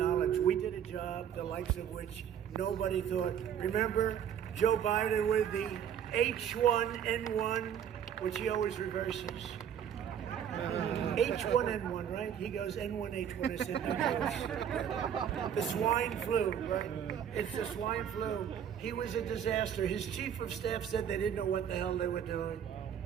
We did a job, the likes of which nobody thought. Remember Joe Biden with the H1N1, which he always reverses. H1N1, right? He goes N1, H1. I said, no, the swine flu, right? It's the swine flu. He was a disaster. His chief of staff said they didn't know what the hell they were doing.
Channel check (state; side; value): quieter; left; 8.9 dB